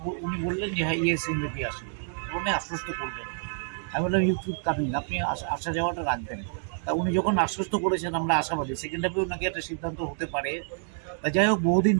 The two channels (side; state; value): left; silent; digital silence